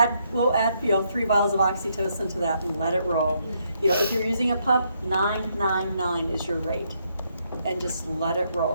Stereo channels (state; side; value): inverted; both; correlation -0.75